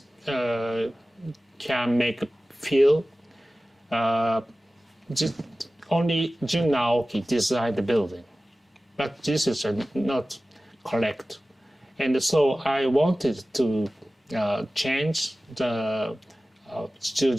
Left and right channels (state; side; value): normal; both; correlation 0.96